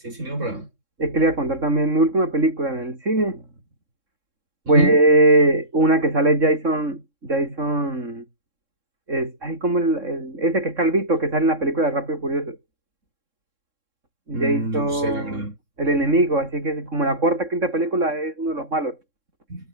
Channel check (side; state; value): left; late; 3.7 ms